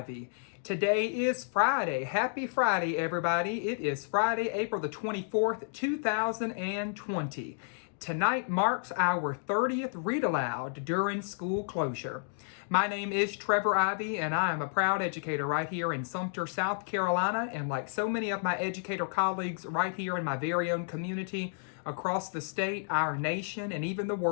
Today is Friday. Happy Friday, everybody. It is Friday, April the 24th, 2020. Tonight marks our 30th Read Aloud during school closure. My name is Trevor Ivey, and I am a proud educator right here in Sumter, South Carolina. And like so many of my educator colleagues right here in my very own community, across the state, our nation, and even the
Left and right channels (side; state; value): right; silent; digital silence